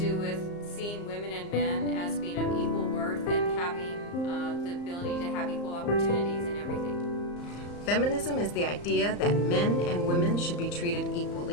with seeing women and men as being of equal worth and having the ability to have equal opportunities in everything. Feminism is the idea that men and women should be treated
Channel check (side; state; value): right; late; 34 ms